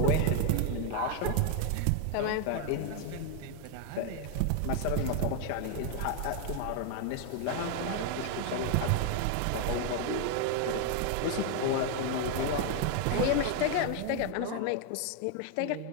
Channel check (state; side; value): different; both; correlation 0.00